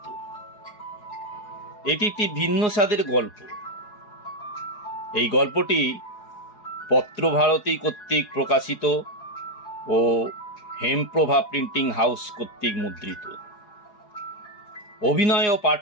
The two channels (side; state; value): right; late; 4.8 ms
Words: এটি একটি ভিন্ন স্বাদের গল্প। এই গল্পটি পত্রভারতী কর্তৃক প্রকাশিত ও হেমপ্রভা প্রিন্টিং হাউস কর্তৃক মুদ্রিত। অভিনয় ও